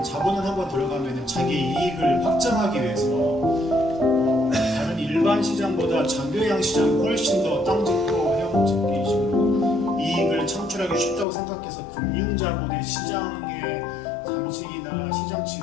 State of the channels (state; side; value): drops out; right; at 11.2 s